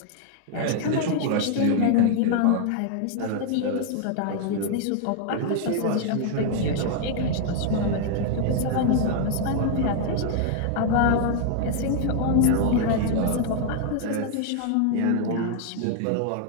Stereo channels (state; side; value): different; both; correlation 0.00